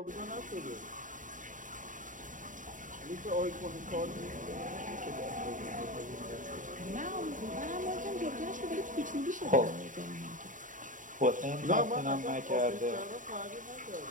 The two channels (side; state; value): left; late; 0.38 ms